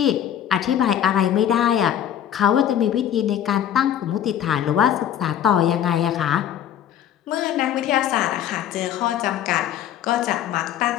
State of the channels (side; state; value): right; quieter; 10.3 dB